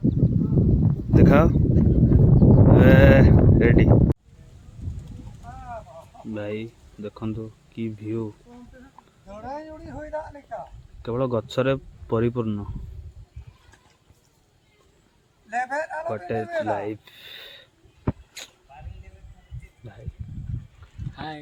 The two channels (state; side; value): identical; both; correlation 1.00